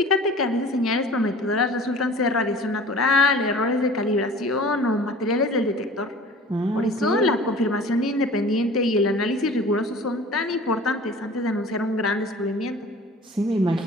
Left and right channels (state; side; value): normal; both; correlation 0.44